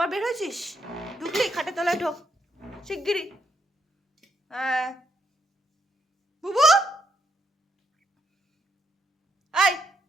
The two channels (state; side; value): normal; both; correlation 0.77